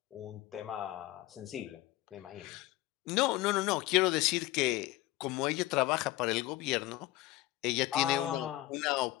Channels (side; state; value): right; quieter; 16.9 dB